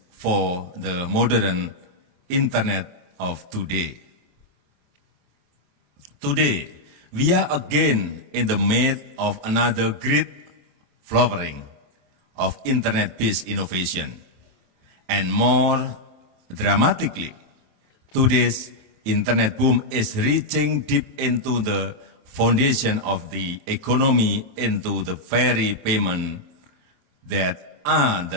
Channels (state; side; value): late; left; 28 ms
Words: for the modern internet of today. Today, we are again in the midst of another great flowering of internet-based innovation. And more dramatically, today's internet boom is reaching deep into the foundation of the economy, into the very payment that are the